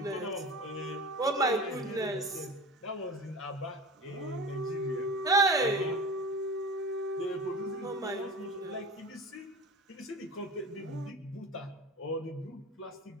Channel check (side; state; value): both; normal; correlation 0.34